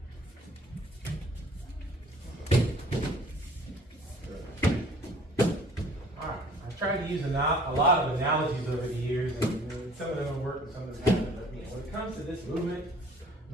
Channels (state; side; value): normal; both; correlation 0.53